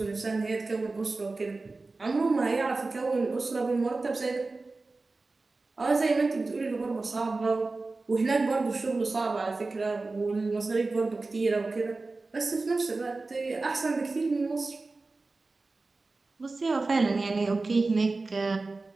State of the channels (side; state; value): left; quieter; 3.6 dB